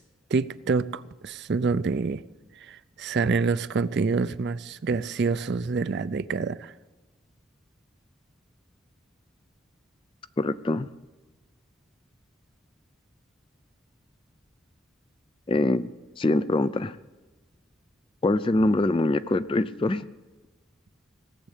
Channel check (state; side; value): normal; both; correlation 0.65